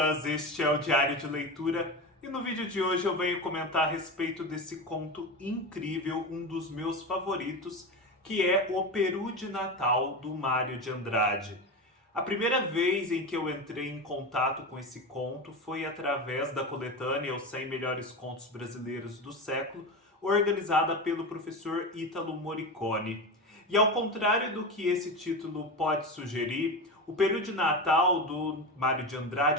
este é o Diário de Leitura e no vídeo de hoje eu venho comentar a respeito desse conto incrível, um dos meus favoritos, que é O Peru de Natal, do Mário de Andrade. A primeira vez em que eu entrei em contato com esse conto foi através da coletânea Os 100 Melhores Contos Brasileiros do Século, organizada pelo professor Ítalo Morricone. E ao contrário do que esse título pode sugerir, O Peru de Natal, do Mário de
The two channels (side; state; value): both; normal; correlation 0.22